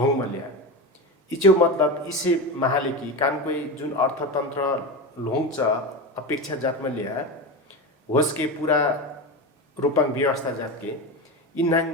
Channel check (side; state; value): both; normal; correlation 0.21